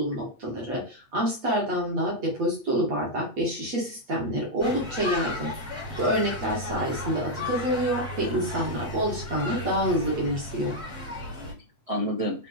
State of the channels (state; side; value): late; left; 8.3 ms